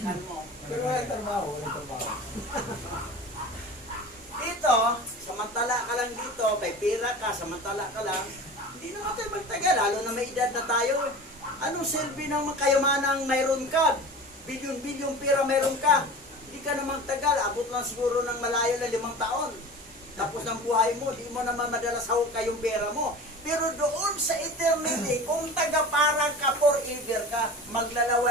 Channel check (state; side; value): normal; both; correlation 0.36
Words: mo. Pero walang trabaho, walang trabaho. Dito, samantala ka lang dito, may pira ka, samantala ka lang, hindi naman tayo magtagal, lalo na may edad na tayo. Anong silbi ng kayamanang mayroon ka? Bilyon-bilyon pira mayroon ka. Hindi ka naman tagal, abot lang siguro ng malayo na 5 taon. Tapos ng buhay mo, di mo naman madalas hawak kayong pera mo. Pero doon sa eternity, kung taga-parang ka forever ka,